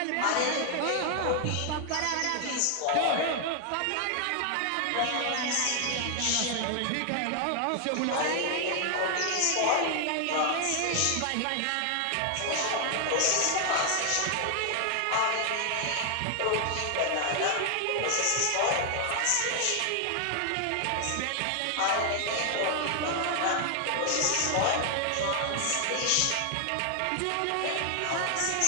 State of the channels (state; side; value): different; both; correlation 0.00